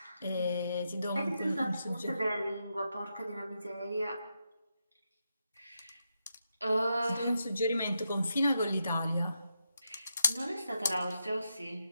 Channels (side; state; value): both; inverted; correlation -0.84